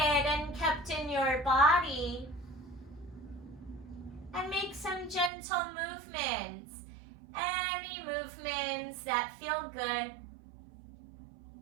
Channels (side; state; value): left; drops out; at 5.3 s